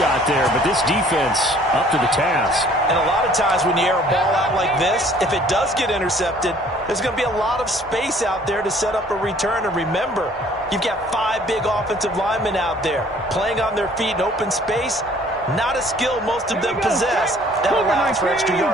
there, but this defense up to the task. And a lot of times when you air a ball out like this, if it does get intercepted, there's going to be a lot of space out there to set up a return. And remember, you've got 5 big offensive linemen out there playing on their feet in open space. Not a skill most of them possess that allows for extra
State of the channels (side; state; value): both; normal; correlation 0.56